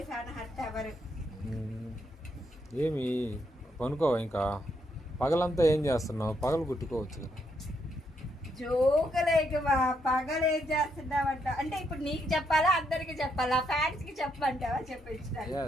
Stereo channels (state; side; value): normal; both; correlation 0.77